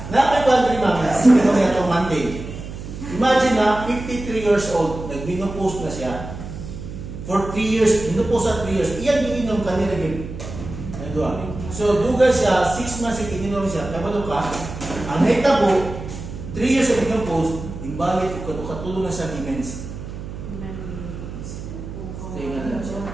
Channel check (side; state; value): right; noise; hum, 10 dB below the sound